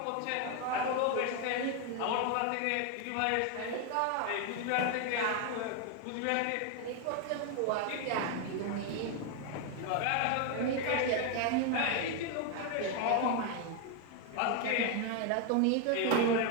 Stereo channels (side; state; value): both; different; correlation 0.01